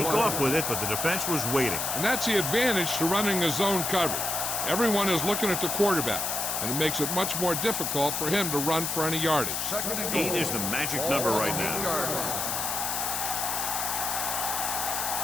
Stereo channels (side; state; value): left; noise; hiss, 1 dB below the sound